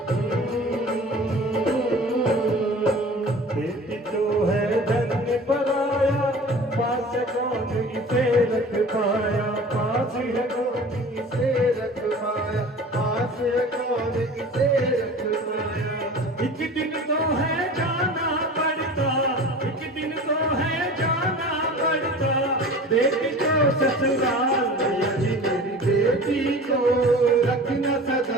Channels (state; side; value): normal; both; correlation 0.40